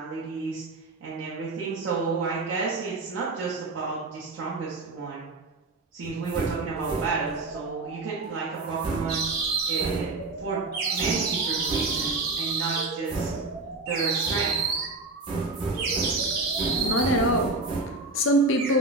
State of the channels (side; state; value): left; quieter; 3.2 dB